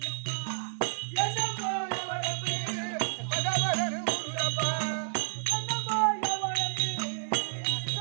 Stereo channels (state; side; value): silent; left; digital silence